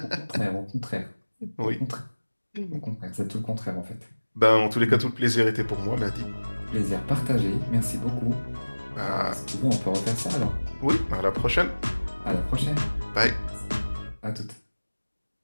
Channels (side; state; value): both; inverted; correlation -1.00